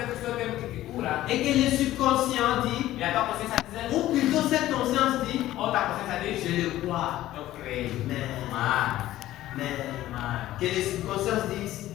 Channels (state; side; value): quieter; right; 14.7 dB